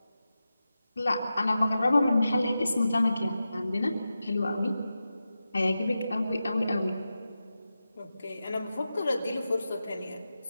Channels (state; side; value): inverted; both; correlation -0.92